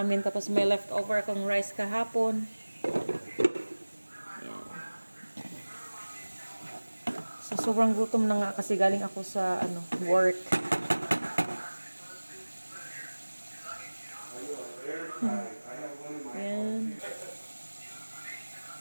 Tapos may leftover akong rice kahapon. Ayan. So, sobrang gutom na nga kasi galing ako sa work. Ayan.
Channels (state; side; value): inverted; both; correlation -1.00